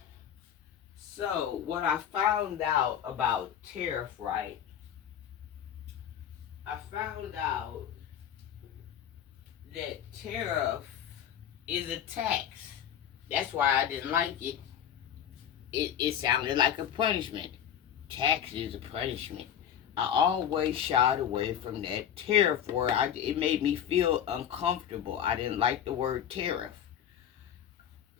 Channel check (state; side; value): quieter; right; 9.6 dB